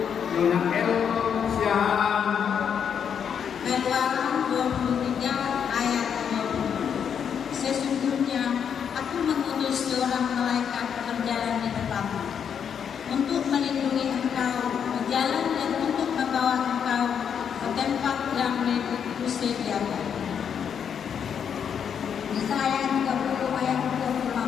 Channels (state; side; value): quieter; right; 7.7 dB